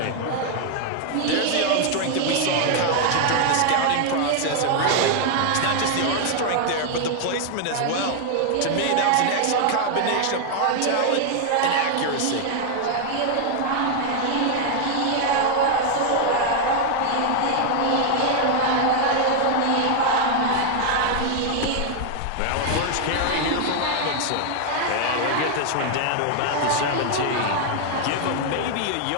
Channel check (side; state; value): both; different; correlation 0.00